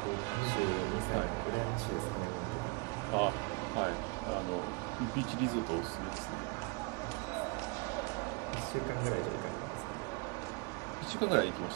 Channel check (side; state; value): left; quieter; 31.7 dB